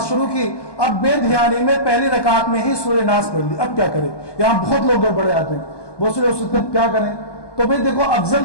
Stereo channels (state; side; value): late; right; 1.2 ms